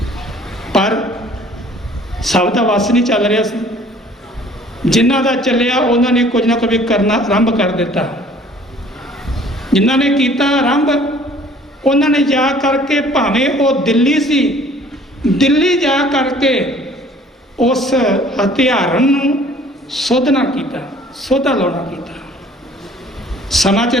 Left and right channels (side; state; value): both; normal; correlation 0.53